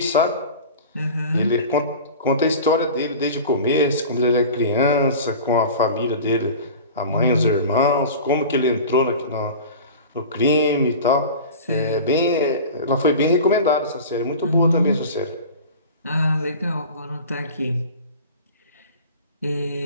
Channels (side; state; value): both; inverted; correlation -0.36